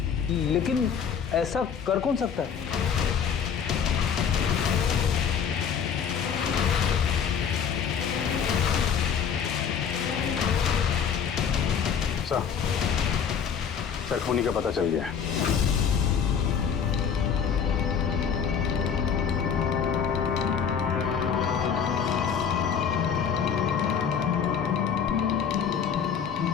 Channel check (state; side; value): quieter; right; 7.3 dB